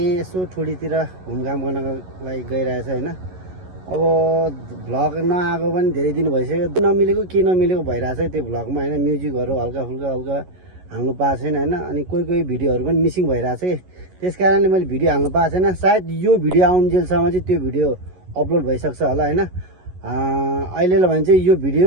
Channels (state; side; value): late; left; 11 ms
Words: यसो ठुडीतिर घुमघाम गर्नको लागि गइरहेछ होइन अब भ्लग नआएको पनि धेरै दिन भइसक्यो नमिलेको के नमिलेको भइरहेछ त्यो भ्लगमा होइन म्युजिकहरू हल्का फुल्का हाल्नु पाएको छैन होइन अनि कोही भिडियोहरू पनि मिसिङ भइरहेछ कि त्यस कारणले मैले भिडियो हाल्नु पाएको छैन सायद यो भिडियो आउन्जेलसम्म चाहिँ त्यो भिडियो अपलोड भइसक्छ होला होइन अहिलेलाई भने चाहिँ यो भिडियो